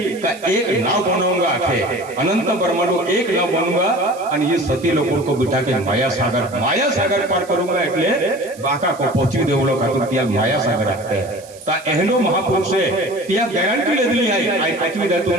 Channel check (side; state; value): right; noise; hiss, 21 dB below the sound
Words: का एक नाव बनाऊंगा आखे अनंत ब्रह्मांडो एक नाव बनूंगा और ये सती लोगों को बिठा के माया सागर पार करूंगा એટલે बाका को पहुंची देवलो खातिर त्या माया सागर आते हैं ता एहनो महापुरुष है त्या गारंटी लेदली है आई पचवी दे